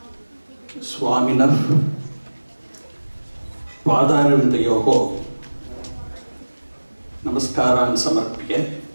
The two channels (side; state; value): both; inverted; correlation -1.00